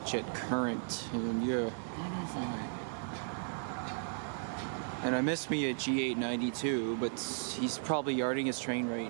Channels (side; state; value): left; silent; 54 dB below the other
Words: at current, and yeah. And I miss me at G892, but he's probably yarding his train